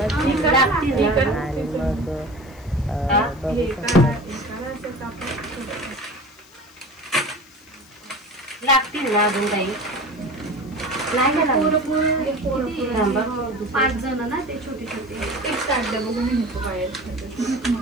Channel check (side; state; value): left; noise; hiss, 30 dB below the sound